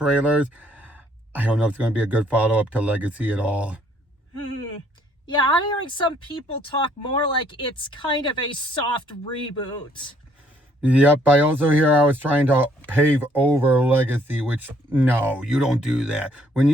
I don't know if it's going to be a good follow-up to Legacy at all. Yeah, I'm hearing some people talk more like it's kind of a soft reboot. Yep, I also hear I was trying to pave over Legacy, which, no, you don't do that. When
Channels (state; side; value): normal; both; correlation 0.65